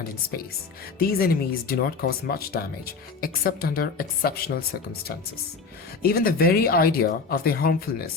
in space, these enemies do not cause much damage except under exceptional circumstances. Even the very idea of their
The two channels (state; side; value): quieter; right; 4.6 dB